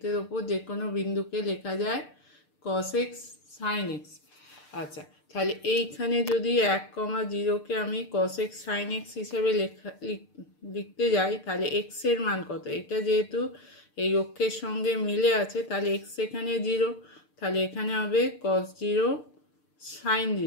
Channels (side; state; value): right; late; 6.7 ms